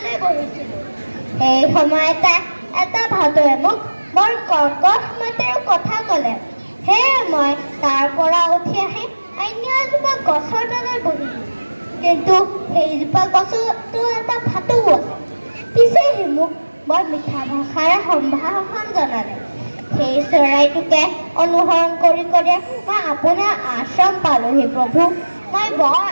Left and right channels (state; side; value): inverted; both; correlation -1.00